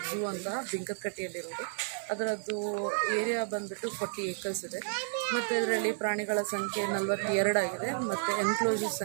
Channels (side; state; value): left; silent; digital silence